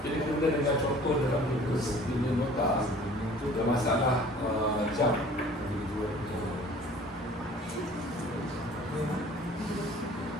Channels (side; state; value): both; normal; correlation 0.49